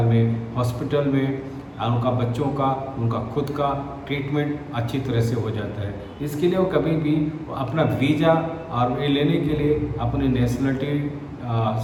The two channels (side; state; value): both; identical; correlation 1.00